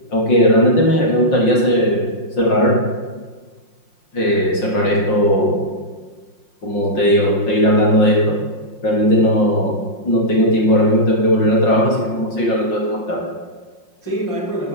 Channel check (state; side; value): late; right; 5.6 ms